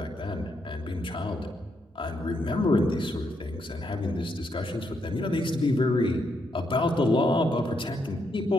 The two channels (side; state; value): both; normal; correlation 0.78